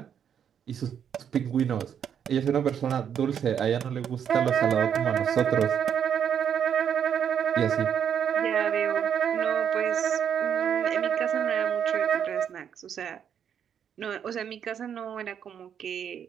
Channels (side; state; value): left; quieter; 8.4 dB